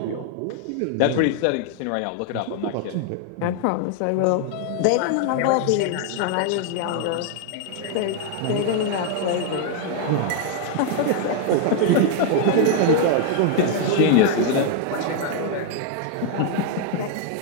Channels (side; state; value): both; different; correlation 0.00